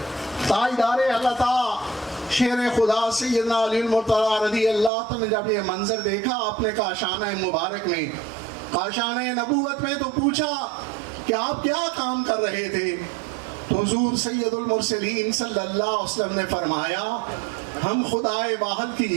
تاجدار عطا شیر خدا سیدنا علی المرتضیٰ رضی اللہ عنہ نے جب یہ منظر دیکھا اپنے کاشانہ مبارک میں، کاشانہ نبوت میں، تو پوچھا کہ آپ کیا کام کر رہے تھے؟ تو حضور سید المرسلین صلی اللہ علیہ وسلم نے فرمایا ہم خدائے واحد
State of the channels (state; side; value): drops out; left; at 4.9 s